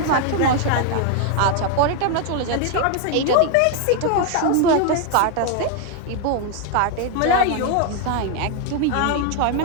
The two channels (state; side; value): different; both; correlation 0.00